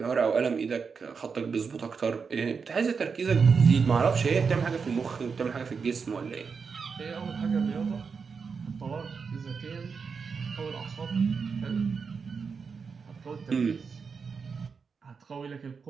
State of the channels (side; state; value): left; quieter; 5.5 dB